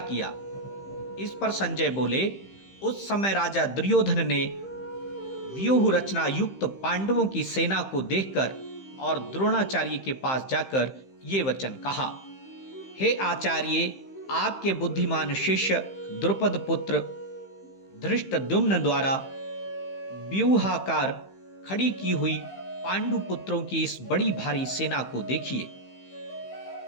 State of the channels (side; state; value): right; late; 15 ms